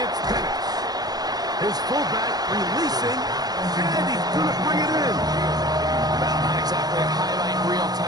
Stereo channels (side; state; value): left; late; 0.19 ms